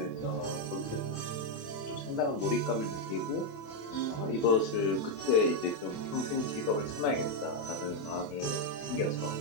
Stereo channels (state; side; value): late; right; 28 ms